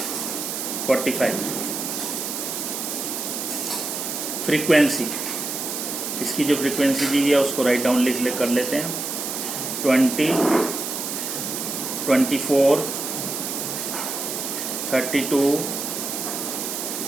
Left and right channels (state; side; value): noise; right; hiss, 4 dB below the sound